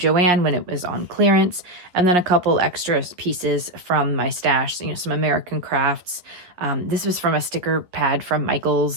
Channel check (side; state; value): left; late; 11 ms